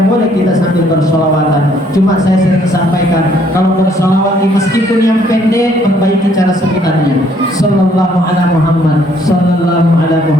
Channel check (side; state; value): both; normal; correlation 0.65